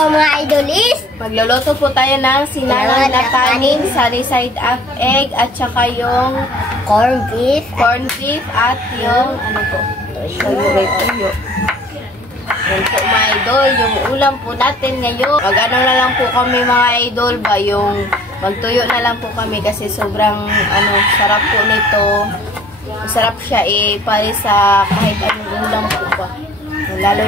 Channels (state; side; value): normal; both; correlation 0.53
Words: mga idolis. Magluluto po tayo ng sinangag na kanin, sunny side up egg, at saka yung corn beef at yung ano po? Tuyo. Yan po mga idol, yung ulam po natin ngayon. Mag-ano na lang po kami mga idol ba, yung magtuyo na lang po kami kasi sobrang sarap po nito. Masarap siya para sa kahit anong ulam po ba. Lalo